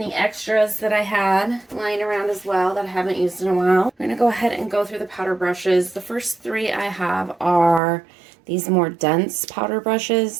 extras that I had lying around as well that I haven't used in a while. I'm gonna go ahead and go through the powder brushes. The first three I have are these more dense powder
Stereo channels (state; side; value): drops out; left; at 7.8 s